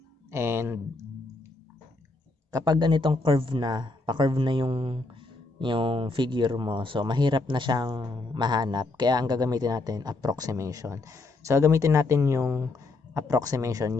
And, kapag ganitong curve na, pa-curve na yung figure mo, so mahirap na siyang mahanap, kaya ang gagamitin natin approximation. So gagamitin natin yung approximation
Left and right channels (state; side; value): quieter; right; 3.3 dB